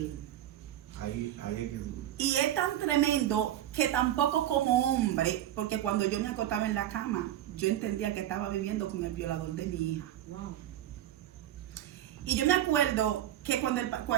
Ahí es que duro. Y es tan tremendo que tampoco como hombre, porque cuando yo me acostaba en la cama, yo entendía que estaba viviendo con el violador de mi hija. Wow. Y yo me acuerdo que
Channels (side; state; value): left; quieter; 12.2 dB